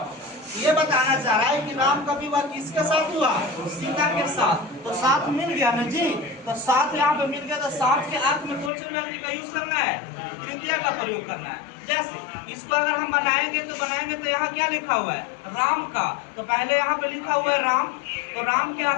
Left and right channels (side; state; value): right; drops out; at 8.7 s